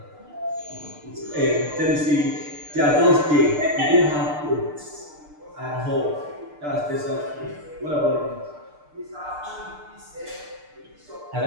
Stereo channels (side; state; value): left; late; 6.7 ms